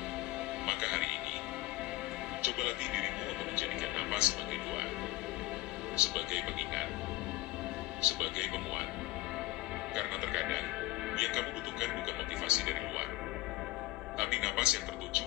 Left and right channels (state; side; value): quieter; right; 18.2 dB